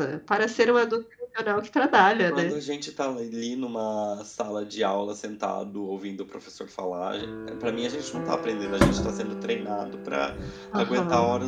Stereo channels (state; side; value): identical; both; correlation 1.00